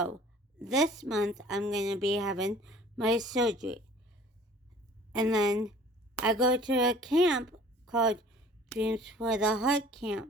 this month I'm going to be having my surgery. And then I go to a camp called Dreams for the Heart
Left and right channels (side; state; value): both; normal; correlation 0.50